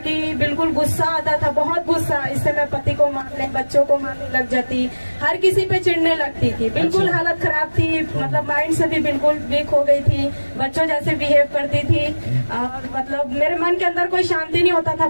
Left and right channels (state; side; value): inverted; both; correlation -1.00